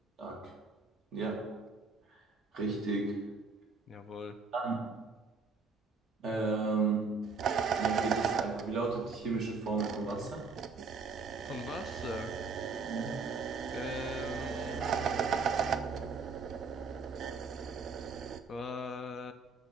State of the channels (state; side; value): quieter; left; 4.3 dB